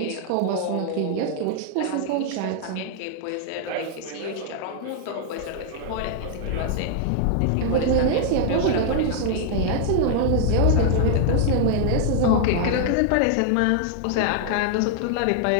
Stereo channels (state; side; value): different; both; correlation -0.01